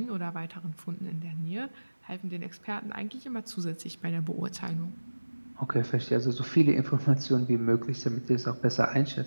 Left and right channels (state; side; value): inverted; both; correlation -1.00